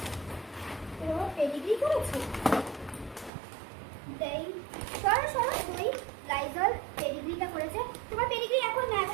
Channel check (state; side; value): drops out; left; at 3.3 s